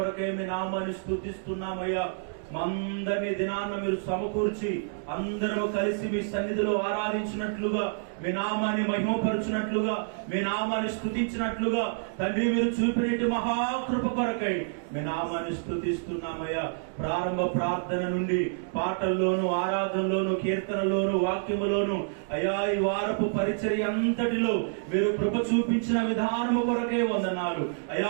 మీ నామాన్ని స్తుతిస్తున్నామయ్యా. మందరి దినాన్న మీరు సమకూర్చి అందరూ కలిసి మీ సన్నిధిలో ఆరాధించినట్లుగా, మీ నామాన్ని మహిమపరచునట్లుగా, మీ నామాన్ని స్తుతించినట్లుగా తండ్రి మీరు చూపినట్టు మహాకృప కొరకై మీ నామాన్ని స్తుతిస్తున్నామయ్యా. ప్రారంభ ప్రార్థన నుండి పాటల్లోను ఆరాధనలోను కీర్తనలోను వాక్యములోను అయ్యా ఈ వారపు పరిచర్య అంతటిలో మీరు కృప చూపించిన విధానము కొరకే వందనాలు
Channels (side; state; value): left; silent; digital silence